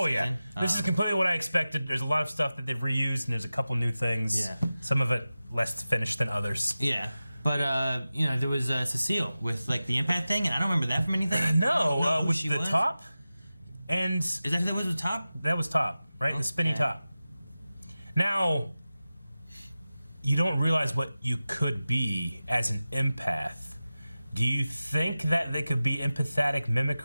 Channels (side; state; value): both; inverted; correlation -0.95